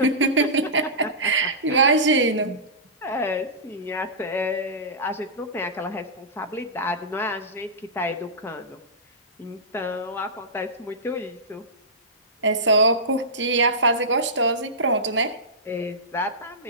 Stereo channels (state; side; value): normal; both; correlation -0.17